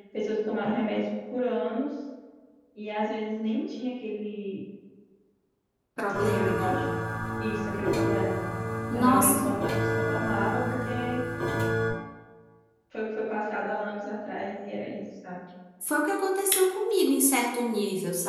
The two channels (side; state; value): both; identical; correlation 1.00